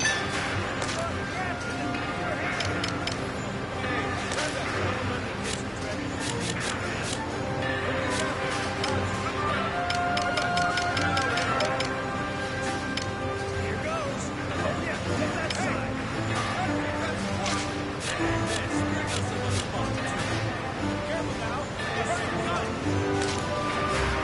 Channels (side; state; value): both; identical; correlation 1.00